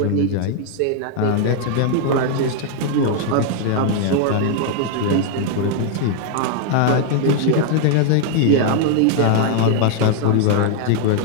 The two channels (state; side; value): different; both; correlation 0.00